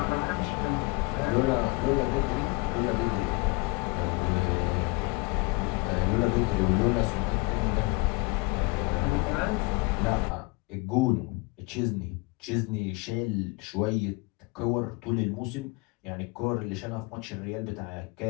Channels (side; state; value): right; quieter; 27.2 dB